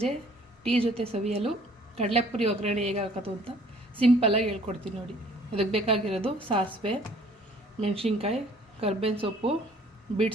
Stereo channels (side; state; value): both; normal; correlation 0.56